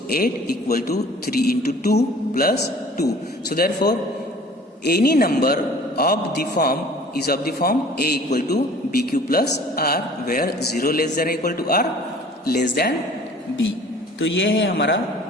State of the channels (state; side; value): normal; both; correlation 0.49